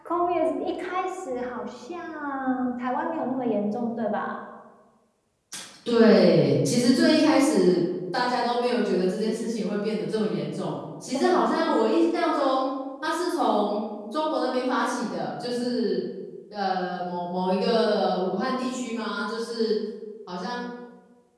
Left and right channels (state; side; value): identical; both; correlation 1.00